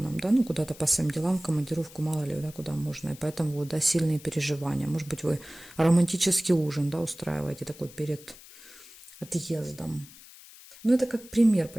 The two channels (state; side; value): noise; left; hiss, 20 dB below the sound